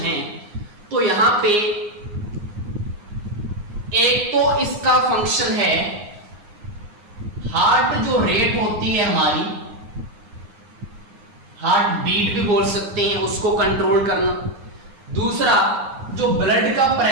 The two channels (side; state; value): left; late; 9.6 ms